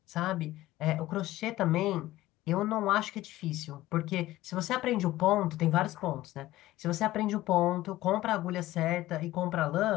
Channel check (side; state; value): right; quieter; 16.3 dB